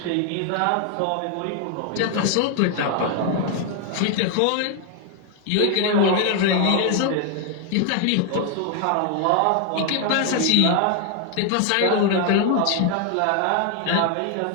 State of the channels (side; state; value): both; different; correlation 0.01